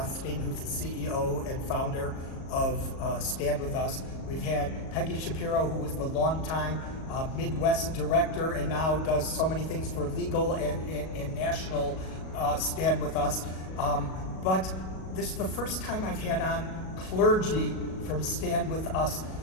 who's the CEO and founder of Stand With Us. We've had Peggy Shapiro, who was the longtime Midwest director and now does so many things for legal and national Stand With Us. But this is the first time I've had on clergy from Stand With Us.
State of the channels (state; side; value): late; right; 37 ms